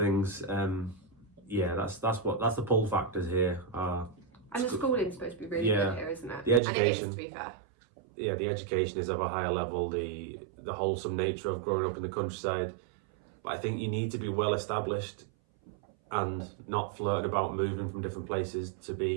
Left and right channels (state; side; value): drops out; left; at 6.6 s